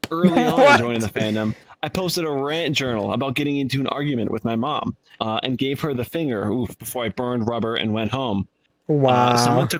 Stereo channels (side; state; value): both; identical; correlation 1.00